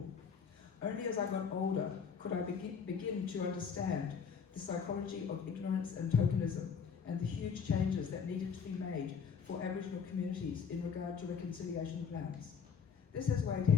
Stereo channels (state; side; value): quieter; right; 6.5 dB